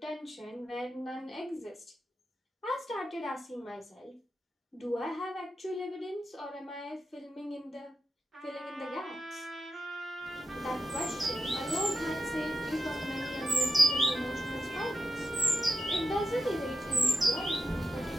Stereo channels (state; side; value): normal; both; correlation 0.87